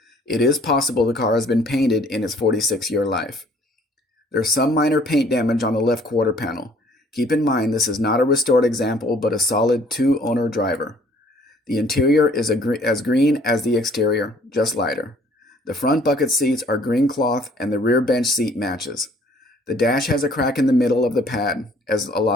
It is possible the car has been painted in its 46-year life. There's some minor paint damage on the left quarter panel. Keep in mind this is not a restored example but a solid 2-owner driver. The interior is as green as the exterior, just lighter. The front bucket seats are green cloth and the rear bench seat matches. The dash has a crack in the middle of the pad, as a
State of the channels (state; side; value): normal; both; correlation 0.58